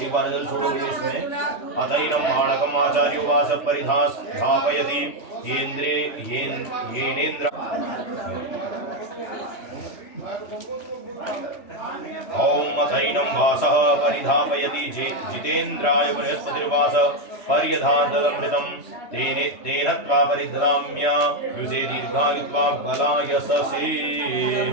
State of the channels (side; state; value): right; late; 3.1 ms